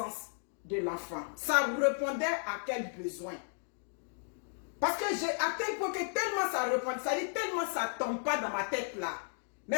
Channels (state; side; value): silent; right; 55 dB below the other